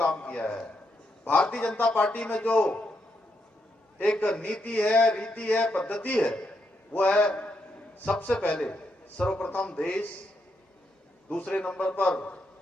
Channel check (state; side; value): normal; both; correlation 0.80